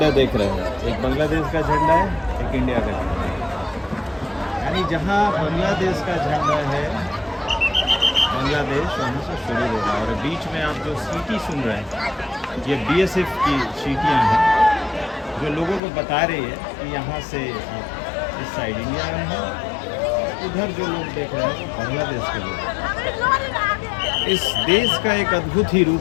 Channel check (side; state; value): right; drops out; at 15.8 s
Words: देख रहे हैं, एक बांग्लादेश का झंडा है, एक इंडिया का झंडा है। यानी जहाँ बांग्लादेश का झंडा है, बांग्लादेश वहाँ से शुरू होगा। और बीच में आप जो सीटी सुन रहे हैं, ये बीएसएफ की सीटियाँ हैं जो लोगों को बता रही है कि यहाँ से आप इस साइड इंडिया में हैं, उधर जो लोग देख रहे हैं वो बांग्लादेश के लोग। इस देश का एक अद्भुत ही